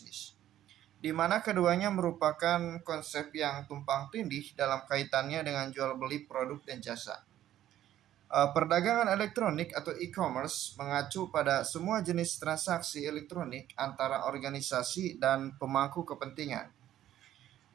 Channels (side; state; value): left; quieter; 12.3 dB